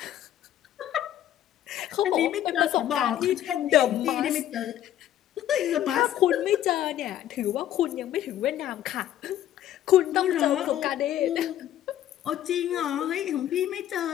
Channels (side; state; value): right; quieter; 11.8 dB